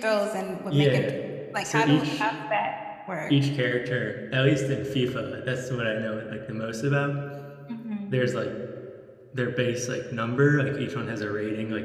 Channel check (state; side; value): identical; both; correlation 1.00